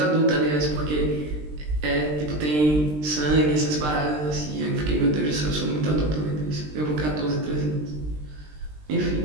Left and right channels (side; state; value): left; late; 20 ms